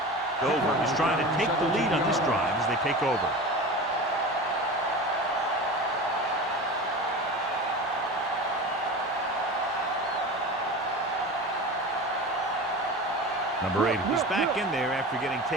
Dover is trying to take the lead on this drive as they take over. Number 8, he's back in there after getting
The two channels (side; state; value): both; normal; correlation 0.31